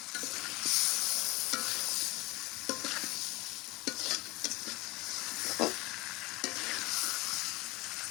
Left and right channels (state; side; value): quieter; right; 22.6 dB